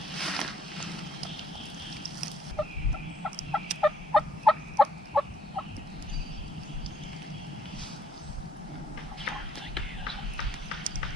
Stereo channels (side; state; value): both; normal; correlation 0.63